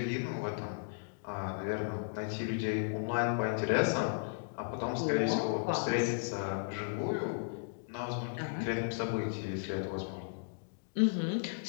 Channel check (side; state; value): right; silent; digital silence